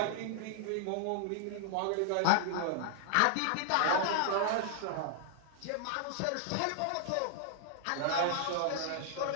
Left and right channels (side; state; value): both; different; correlation -0.01